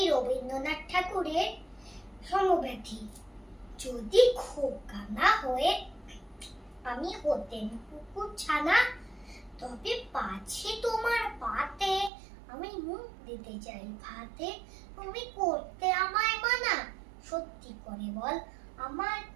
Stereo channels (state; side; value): drops out; left; at 12.1 s